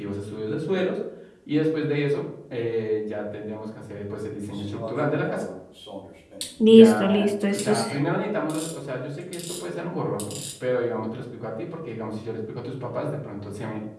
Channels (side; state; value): both; identical; correlation 1.00